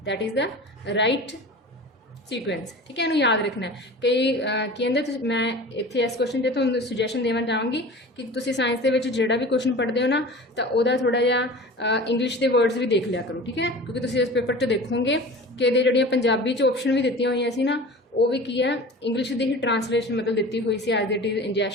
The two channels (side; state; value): both; normal; correlation 0.37